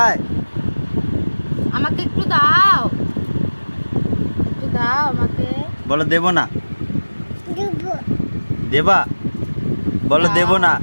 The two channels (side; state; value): both; inverted; correlation -1.00